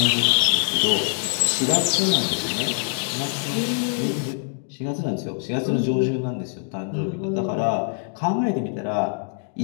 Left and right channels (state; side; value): silent; right; digital silence